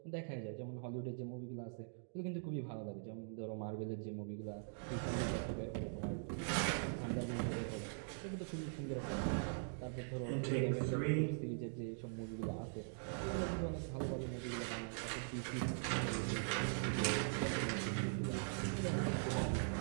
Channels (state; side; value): silent; left; digital silence